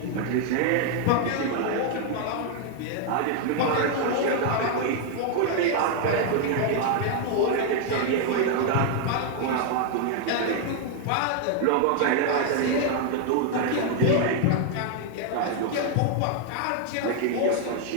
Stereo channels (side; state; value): both; different; correlation 0.00